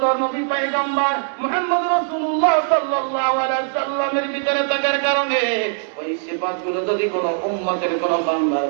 নবী পয়গম্বর মুহাম্মদ রাসূলুল্লাহ সাল্লাল্লাহু আলাইহি সাল্লামের ভিতরে থাকার কারণে, ওই সিফাতগুলো যদি কোনো উম্মতের কোনো বান্দার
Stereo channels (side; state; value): left; silent; digital silence